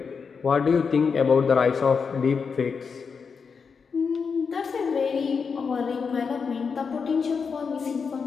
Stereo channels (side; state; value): right; quieter; 5.7 dB